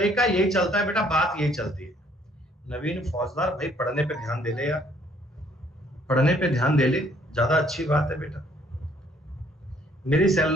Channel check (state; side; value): normal; both; correlation 0.63